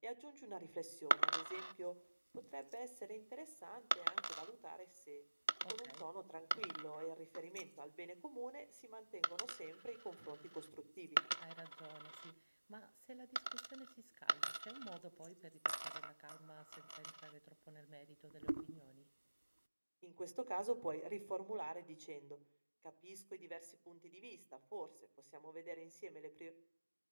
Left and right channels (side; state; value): both; inverted; correlation -1.00